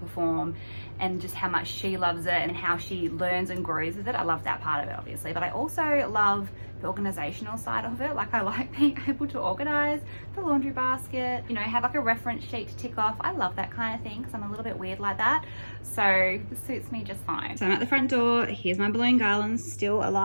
and just how much she loves it and how she learns and grows with it. I love that part of it obviously, but I also love the organizational side of it. Like I like being able to organize the laundry basket, you know, have like a reference sheet to tick off. I love that kind of thing because I'm a little bit weird like that, so this suits me just fine. So I'm at the front door. Here's my balloon garlands, still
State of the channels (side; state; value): both; inverted; correlation -1.00